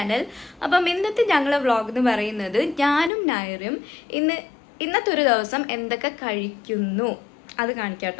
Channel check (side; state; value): right; drops out; at 3.1 s